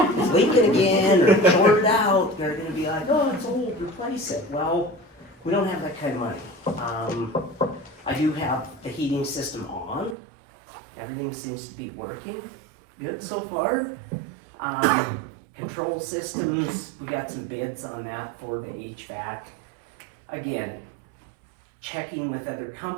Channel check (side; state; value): left; drops out; at 10.2 s